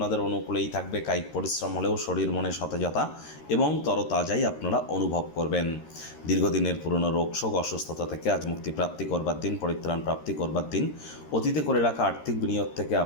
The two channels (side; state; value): right; late; 13 ms